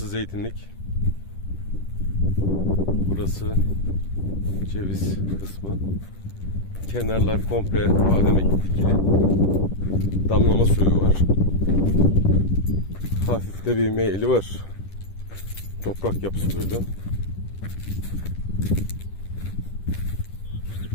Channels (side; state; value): right; late; 10 ms